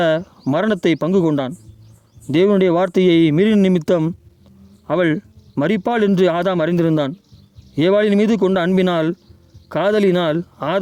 மரணத்தை பங்கு கொண்டான். தேவனுடைய வார்த்தையை மீறின நிமித்தம் அவள் மரிப்பாள் என்று ஆதாம் அறிந்திருந்தான். ஏவாளின் மீது கொண்ட அன்பினால், காதலினால்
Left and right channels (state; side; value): identical; both; correlation 1.00